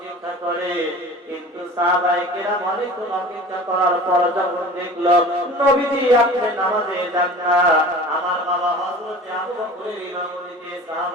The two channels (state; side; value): normal; both; correlation 0.40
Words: করে, কিন্তু সাহাবায়ে কেরাম অনেকক্ষণ অপেক্ষা করার পর যখন দেখলো নবীজি আপনি নামাজে যান না, আমার বাবা হযরত আবু বকরের ইমামতিতে